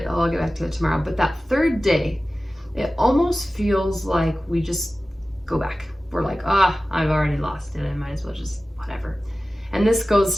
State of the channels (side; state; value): both; normal; correlation 0.96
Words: Oh, I'll get back to it tomorrow. But that third day, it almost feels like we just go back. We're like, I've already lost it. I might as well just whatever. And this